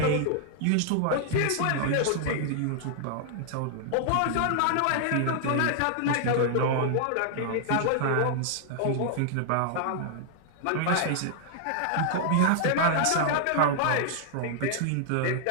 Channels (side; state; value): both; different; correlation 0.00